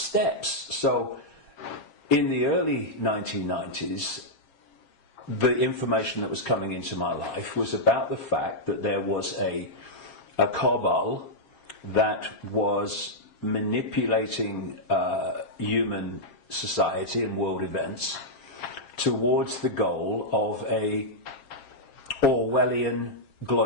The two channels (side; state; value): right; late; 7.5 ms